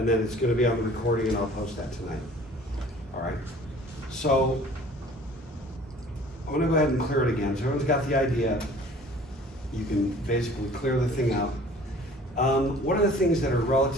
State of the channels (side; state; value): both; normal; correlation 0.50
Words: then it's gonna be on the recording and I'll post that tonight. All right? So I'm gonna go ahead and clear it again. So everyone's got the idea. You can basically clear the thing out. What are the things that are